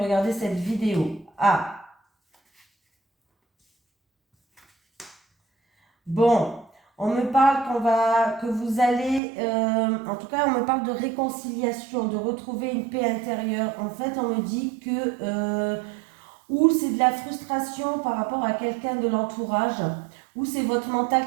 cette vidéo. Ah. Bon, on me parle que vous allez... en tout cas, on me parle de réconciliation, de retrouver une paix intérieure. En fait, on me dit que... ou c'est de la frustration par rapport à quelqu'un de l'entourage, ou c'est votre mental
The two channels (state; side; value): drops out; left; at 9.2 s